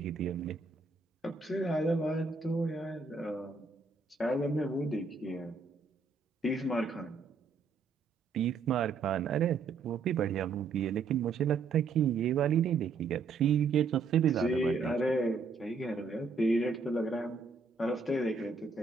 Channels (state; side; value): quieter; left; 4.5 dB